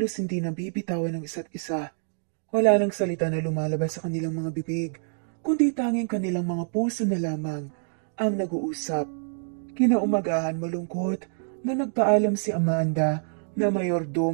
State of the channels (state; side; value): silent; left; digital silence